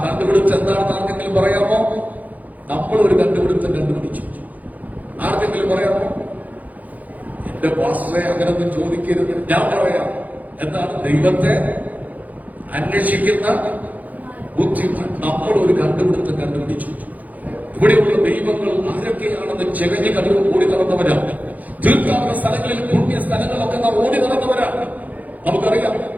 കണ്ടുപിടുത്തം എന്താണെന്ന് ആർക്കെങ്കിലും പറയാമോ? നമ്മൾ ഒരു കണ്ടുപിടുത്തം കണ്ടുപിടിച്ചു. ആർക്കെങ്കിലും പറയാമോ? എന്റെ പാസ്റ്ററെ അങ്ങനൊന്നും ചോദിക്കരുത്. ഞാൻ പറയാം. എന്താണ്? ദൈവത്തെ അന്വേഷിക്കുന്ന ബുദ്ധിമാൻ. നമ്മൾ ഒരു കണ്ടുപിടിച്ചു. ഇവിടെയുള്ള ദൈവങ്ങൾ ആരൊക്കെയാണെന്ന് ചെകഞ്ഞ് കടന്നു ഓടി നടന്നവരാ. തീർത്ഥാടന സ്ഥലങ്ങളിൽ, പുണ്യ സ്ഥലങ്ങളൊക്കെ നാം ഓടി നടന്നവരാ, നമുക്കറിയാം.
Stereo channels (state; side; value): late; left; 0.079 ms